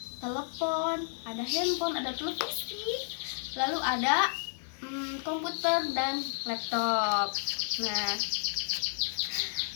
telepon, ada handphone, ada televisi, lalu ada komputer dan laptop. Nah,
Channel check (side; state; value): right; silent; digital silence